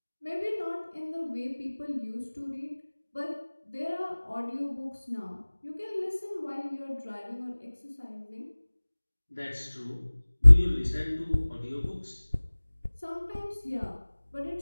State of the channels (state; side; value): inverted; both; correlation -1.00